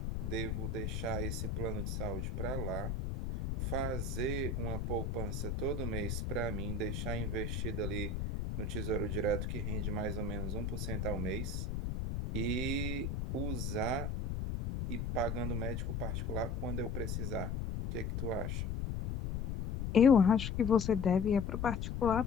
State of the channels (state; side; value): noise; left; rumble, 2 dB below the sound